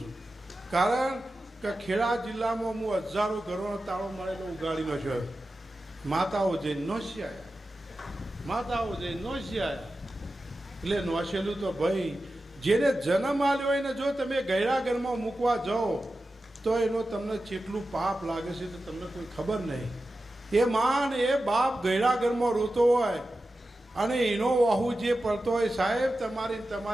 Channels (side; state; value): both; normal; correlation 0.93